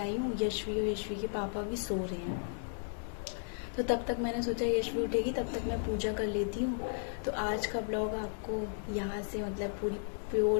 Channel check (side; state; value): right; silent; 55 dB below the other